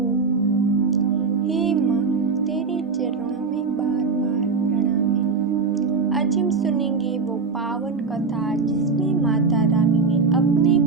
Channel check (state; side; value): quieter; left; 4.7 dB